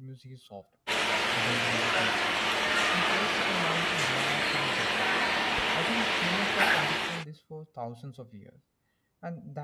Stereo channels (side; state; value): both; identical; correlation 1.00